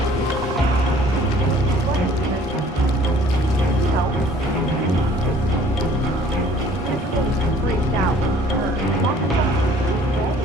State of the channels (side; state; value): both; normal; correlation 0.54